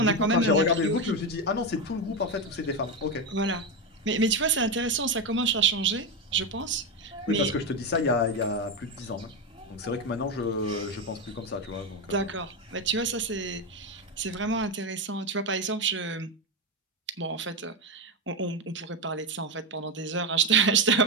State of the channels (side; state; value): both; normal; correlation 0.11